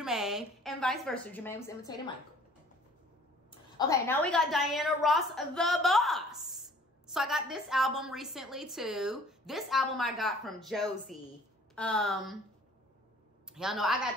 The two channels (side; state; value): both; normal; correlation 0.53